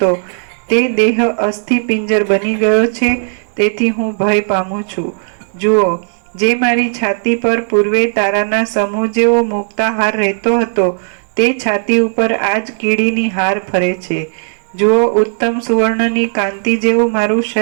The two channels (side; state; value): left; silent; digital silence